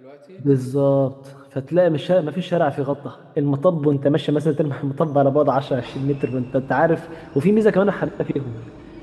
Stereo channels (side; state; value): both; identical; correlation 1.00